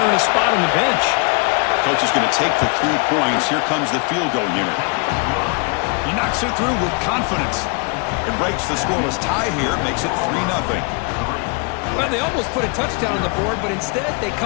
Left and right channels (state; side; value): quieter; right; 33.1 dB